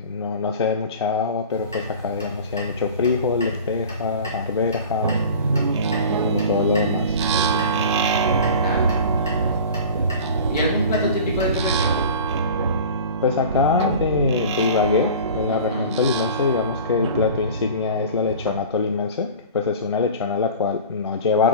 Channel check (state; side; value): inverted; both; correlation -0.38